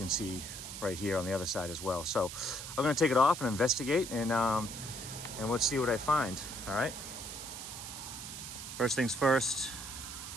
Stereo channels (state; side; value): noise; right; hiss, 9 dB below the sound